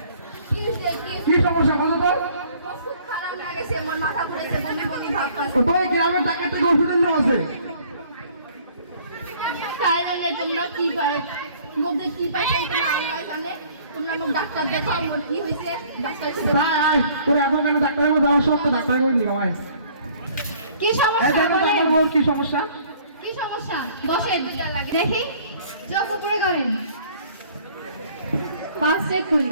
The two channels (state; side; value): inverted; both; correlation -0.56